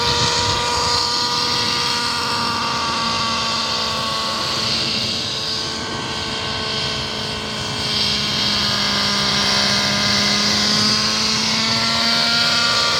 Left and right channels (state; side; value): identical; both; correlation 1.00